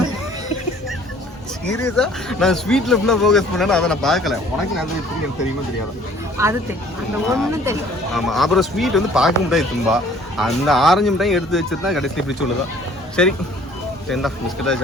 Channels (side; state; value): both; normal; correlation 0.55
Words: சீரியஸா நான் ஸ்வீட்ல ஃபுல்லா ஃபோக்கஸ் பண்ணேன், அதை நான் பார்க்கல. உனக்கு நேந்திர சிப்ஸ் எனக்கு தெரியுமா தெரியாதா? அது தெரியும், அந்த ஒண்ணு தெரியும். ஆமா, அப்புறம் ஸ்வீட் வந்து பார்க்க முடியாது தும்பா. அந்த ஆரஞ்சு மிட்டாய் எடுத்து வச்சிருந்தா கடைசி இப்படி சொல்லுதா. சரி, இந்த பிஸ்கெட்டா